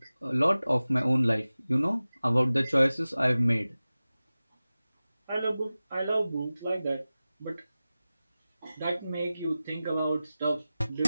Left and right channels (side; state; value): both; inverted; correlation -0.96